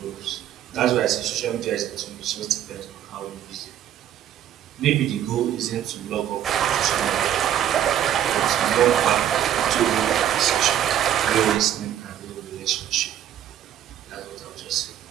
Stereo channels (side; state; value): left; quieter; 10.7 dB